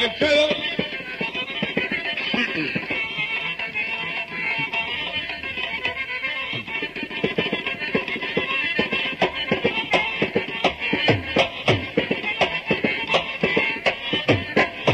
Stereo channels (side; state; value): both; identical; correlation 1.00